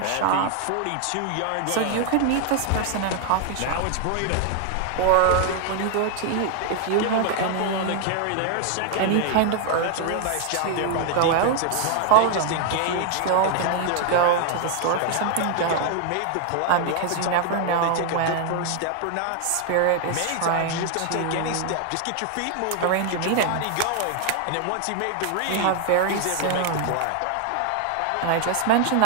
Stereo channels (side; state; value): both; different; correlation 0.00